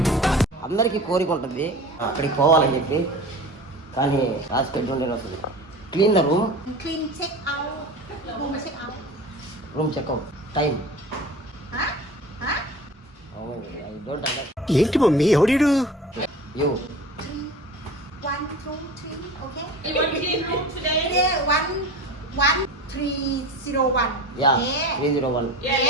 అందరికి కోరిక ఉంటుంది అక్కడికి పోవాలని చెప్పి, కానీ రాసి పెట్టి ఉండే వస్తుంది. Clean the room, room checkout time. I don't understand. ఏంటి మమ్మీ ఎవడీడు? You 1, 2, 3, okay? You want clean room today? Today 1, 301. yeah Yeah. 301. Yeah,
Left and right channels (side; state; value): both; normal; correlation 0.36